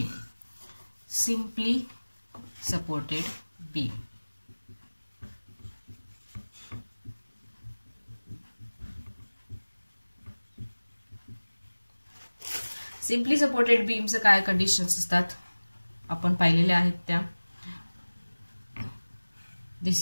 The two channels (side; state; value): both; inverted; correlation -1.00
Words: Simply supported beam. Simply supported बीमचं काय कंडिशन्स असतात आपण पाहिलेले आहेत त्या.